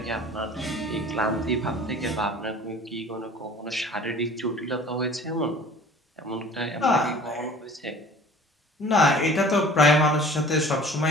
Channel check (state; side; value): normal; both; correlation 0.46